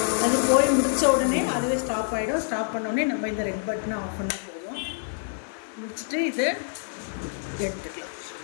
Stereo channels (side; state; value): right; silent; digital silence